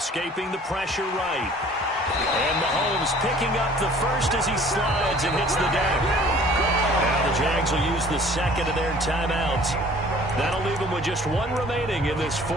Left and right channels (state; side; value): normal; both; correlation 0.51